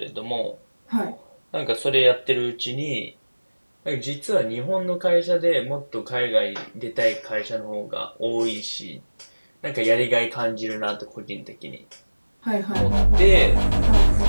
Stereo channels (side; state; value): both; inverted; correlation -1.00